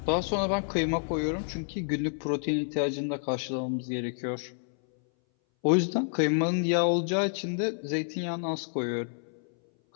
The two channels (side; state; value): right; silent; 59 dB below the other